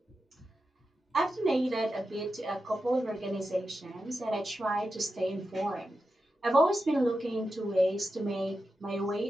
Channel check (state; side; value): normal; both; correlation 0.90